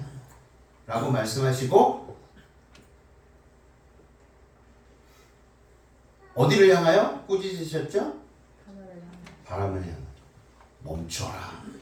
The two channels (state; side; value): identical; both; correlation 1.00